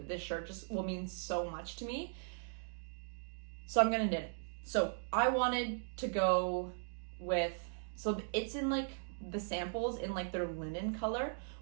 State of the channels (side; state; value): left; silent; digital silence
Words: this shirt just will mean so much to me. So I'm going to knit it. So I wanted to go with, so it's in like the samples in like their linen color,